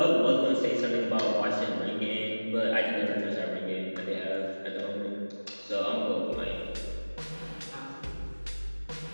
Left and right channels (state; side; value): inverted; both; correlation -1.00